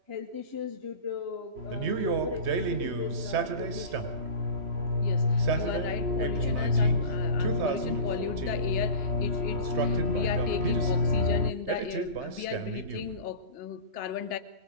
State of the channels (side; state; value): left; late; 3.2 ms